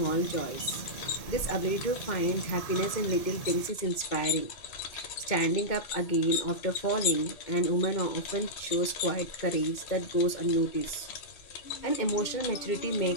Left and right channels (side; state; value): right; late; 2.2 ms